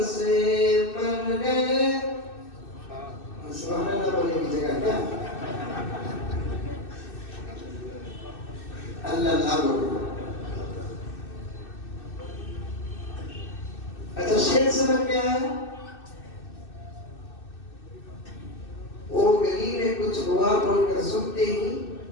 سے مر گئے. سبحان اللہ بولنے کی جگہ کیا؟ اللہ اللہ بولو. اچھا شعر سمجھ میں آیا؟ وہ گلی میں کچھ ہوا بول کر سنتے ہی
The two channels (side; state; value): right; late; 2.6 ms